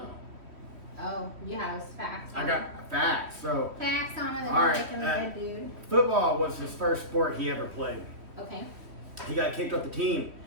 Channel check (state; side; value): late; left; 3.1 ms